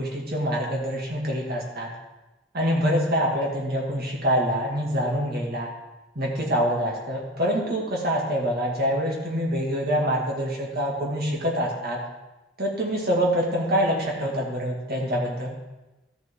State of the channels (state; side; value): normal; both; correlation 0.32